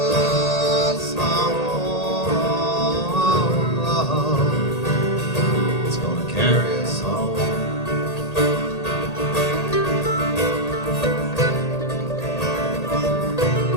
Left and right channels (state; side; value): late; right; 1.8 ms